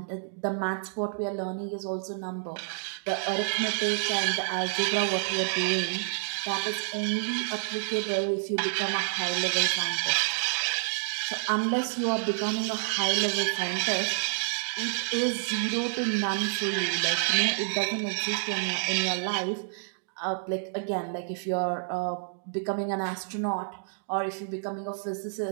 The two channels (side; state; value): left; silent; digital silence